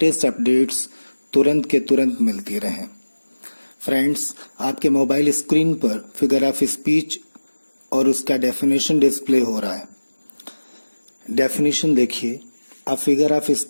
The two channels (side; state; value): both; inverted; correlation -1.00